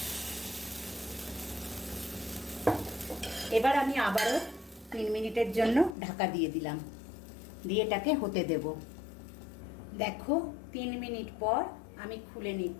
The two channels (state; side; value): drops out; right; at 6.0 s